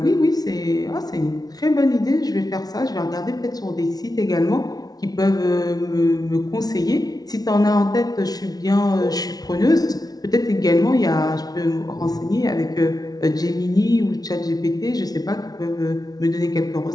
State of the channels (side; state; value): right; late; 0.19 ms